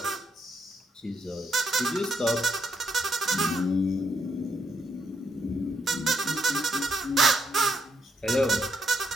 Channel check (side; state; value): both; normal; correlation 0.76